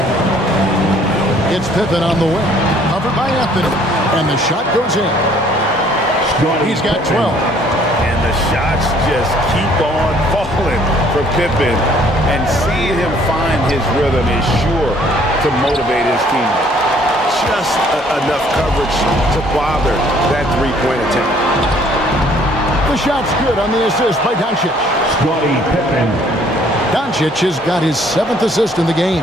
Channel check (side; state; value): both; normal; correlation 0.60